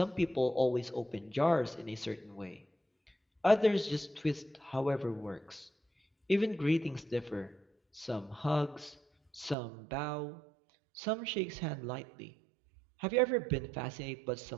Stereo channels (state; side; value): drops out; left; at 9.6 s